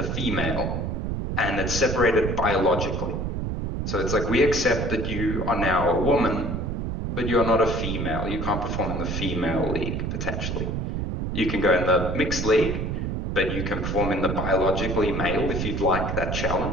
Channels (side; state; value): right; noise; rumble, 2 dB below the sound